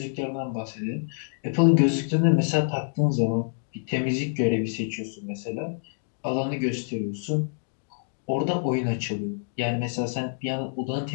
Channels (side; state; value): right; silent; digital silence